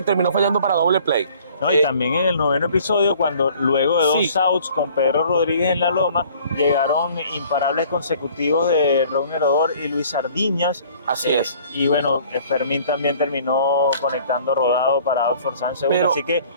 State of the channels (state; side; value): inverted; both; correlation -0.53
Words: terminó fallando para doble play. No, y también en el noveno episodio, cuando luego de 2 outs con Pedro Rodríguez en la loma, llegaron imparables consecutivos de Ron Herodor y Luis Sardiñas. Así es. Y bueno, Fermín también terminó conectando rodado para Outford Sánchez. Así que